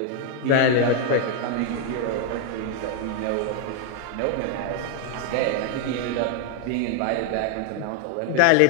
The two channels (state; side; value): different; both; correlation 0.00